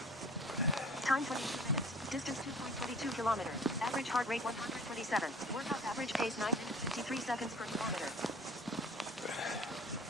Time 22 minutes. Distance 2.22 kilometers. Average heart rate 127. Workout average pace 9 minutes 53 seconds per kilometer.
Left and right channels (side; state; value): both; normal; correlation 0.47